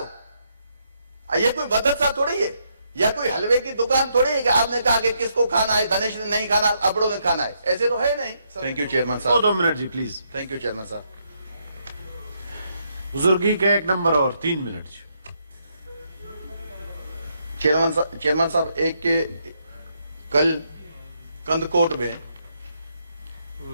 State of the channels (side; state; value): both; inverted; correlation -0.76